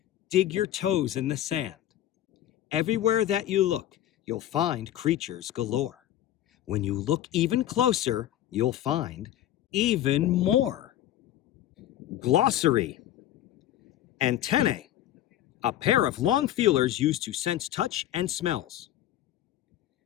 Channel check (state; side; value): quieter; right; 12.6 dB